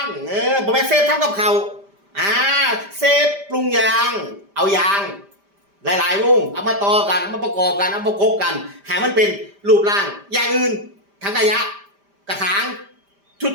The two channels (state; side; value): late; left; 5.0 ms